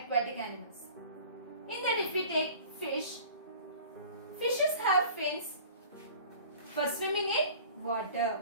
animals. In that if we take fish, fishes have fins for swimming in water.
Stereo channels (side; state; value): both; inverted; correlation -0.44